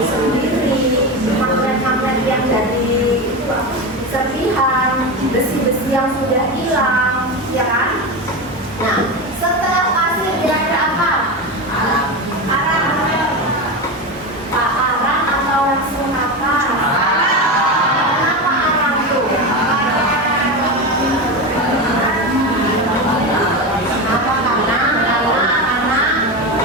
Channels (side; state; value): both; normal; correlation 0.19